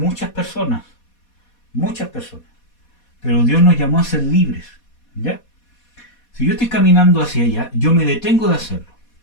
personas. Muchas personas. Pero Dios nos llamó a ser libres. ¿Ya? Si yo estoy caminando hacia allá, yo me detengo de hacerlo.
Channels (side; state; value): right; late; 4.2 ms